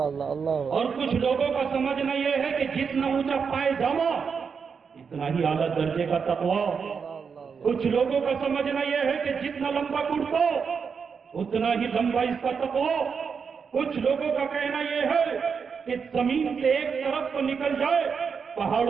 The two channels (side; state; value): left; quieter; 6.0 dB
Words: اللہ اللہ۔ اور کچھ لوگوں کا سمجھنا یہ ہے کہ جتنا اونچا پائجامہ اتنا ہی اعلیٰ درجے کا تقوی۔ کچھ لوگوں کا سمجھنا یہ ہے کہ جتنا لمبا کرتا اتنا ہی لمبا اس کا تقوی۔ کچھ لوگوں کا کہنا یہ ہے کہ زمین سے ایک طرف کو نکل جائے،